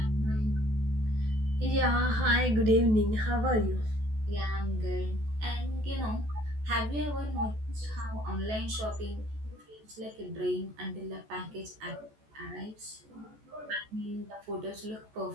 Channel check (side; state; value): left; late; 14 ms